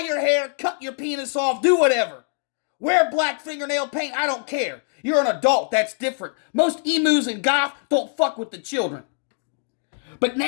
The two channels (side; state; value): right; silent; digital silence